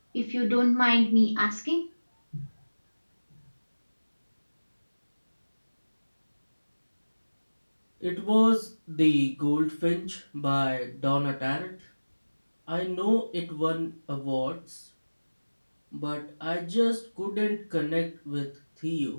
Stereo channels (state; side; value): inverted; both; correlation -1.00